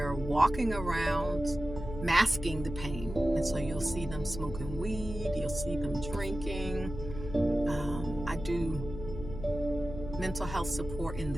walking around masking the pain. And so you'll see them smoking weed. You'll see them drinking. I do mental health support in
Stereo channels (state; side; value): noise; left; hum, 9 dB below the sound